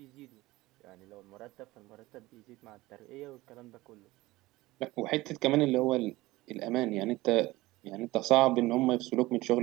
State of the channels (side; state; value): left; quieter; 19.2 dB